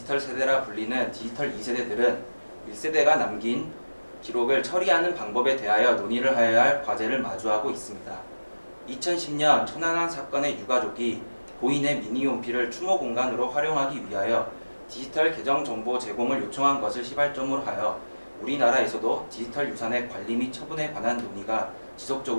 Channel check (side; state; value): both; inverted; correlation -1.00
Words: 세대라 불리는 디지털 2세대들은 1세대가 남긴 기록을 처리하는 방법에 대하여 논의를 하여야 할 과제를 마주하고 있습니다. 2010년 천안함 사건의 유가족이 고인의 미니홈피를 추모 공간으로 활용하기 위하여 디지털 계정 정보 제공을 요청한 것을 시발점으로 하여 우리나라에서도 디지털 유산의 관리 및 처분에 관한 논의가